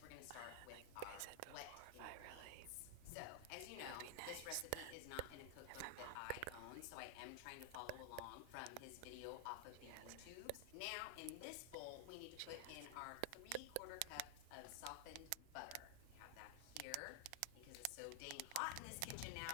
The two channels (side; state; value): both; different; correlation 0.00